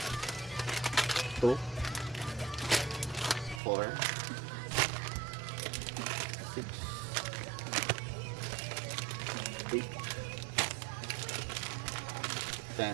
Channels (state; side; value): drops out; left; at 3.6 s